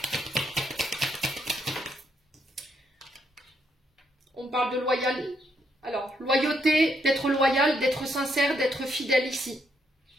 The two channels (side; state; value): both; normal; correlation 0.76